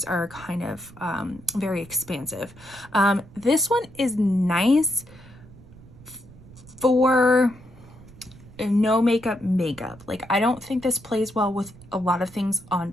are kind of very expansive. This one is nice for no makeup. Like, I don't think this plays well with a lot of things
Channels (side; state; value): right; noise; rumble, 21 dB below the sound